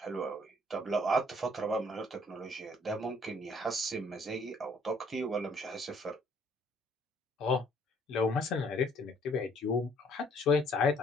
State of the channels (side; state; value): both; normal; correlation 0.62